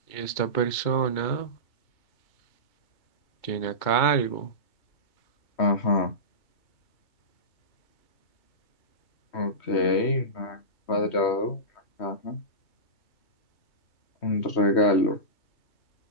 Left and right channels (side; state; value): right; late; 2.3 ms